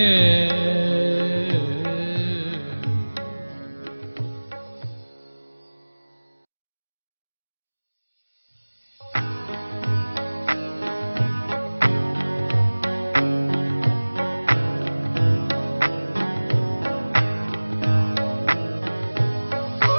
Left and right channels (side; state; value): both; inverted; correlation -1.00